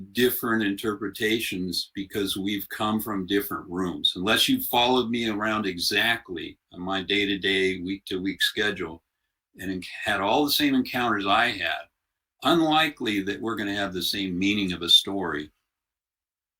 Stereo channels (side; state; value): both; identical; correlation 1.00